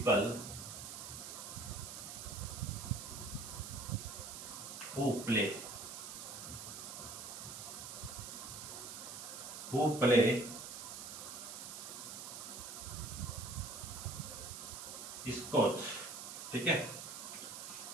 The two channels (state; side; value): noise; right; hiss, 8 dB below the sound